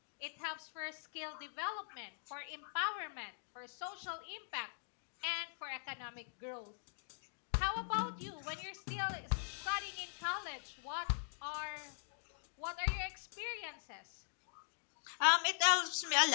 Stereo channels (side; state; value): right; silent; digital silence